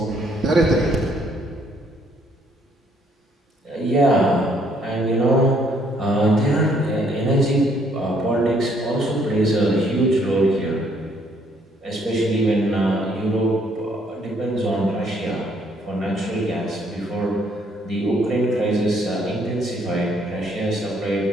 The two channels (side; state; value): both; normal; correlation 0.67